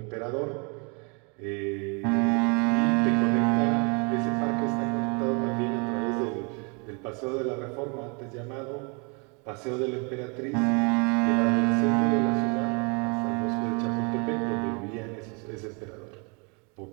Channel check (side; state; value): left; quieter; 33.3 dB